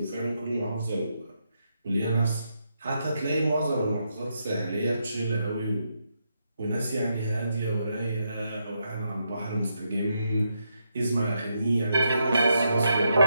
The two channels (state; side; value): inverted; both; correlation -0.81